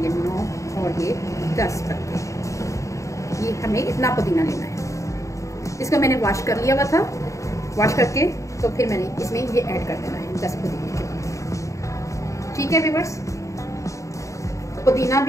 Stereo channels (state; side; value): late; right; 0.15 ms